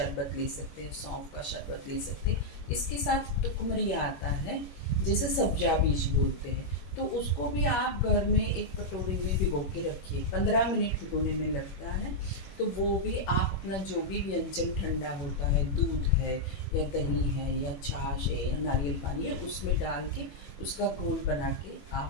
ले सकते हैं, सौंफ का शरबत ले सकते हैं। इसके साथ टुकमरिया आता है, जैसे सब्जा बीज बोलते हैं, तो उसको भी आप घर में एक कटोरी में भिगो के रखिए, 15 मिनट भिगोने में लगता है। तो वो भी आप अपना जो भी व्यंजन ठंडा होता है, दूध है या दही है या छाछ है या नारियल पानी है, उसमें डाल के उसका घोल बना के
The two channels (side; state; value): right; late; 21 ms